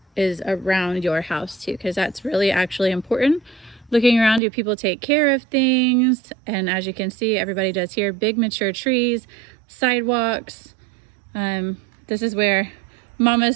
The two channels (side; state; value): left; drops out; at 4.4 s